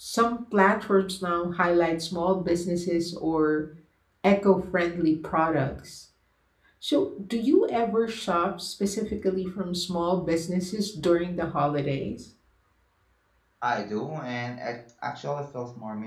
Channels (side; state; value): both; identical; correlation 1.00